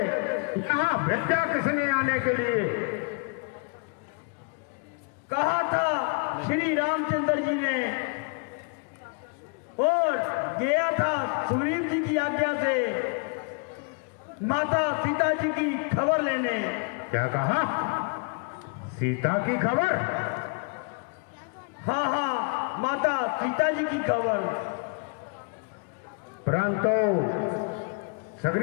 यहां भेजा किसने आने के लिए? कहा था श्री रामचंद्र जी ने, और गया था सुग्रीव जी की आज्ञा से माता सीता जी की खबर लेने। क्या कहा? सीता की खबर? हाँ हाँ, माता सीता जी की खबर। परंतु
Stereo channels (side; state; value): right; quieter; 39.4 dB